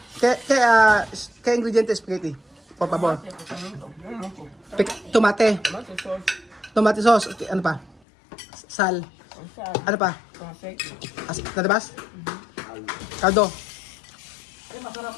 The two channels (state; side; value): drops out; right; at 8.0 s